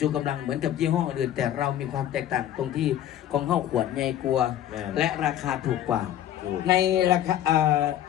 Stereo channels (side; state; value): right; quieter; 11.6 dB